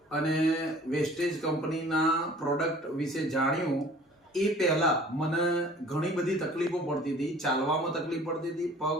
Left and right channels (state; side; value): normal; both; correlation 0.49